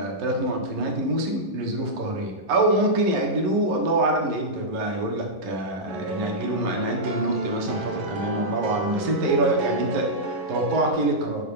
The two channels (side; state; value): left; late; 11 ms